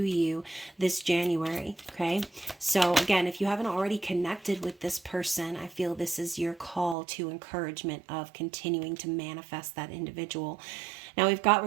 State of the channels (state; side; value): drops out; left; at 7.0 s